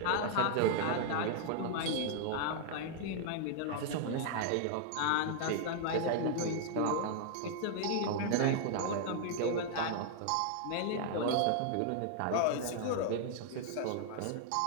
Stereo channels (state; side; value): different; both; correlation -0.01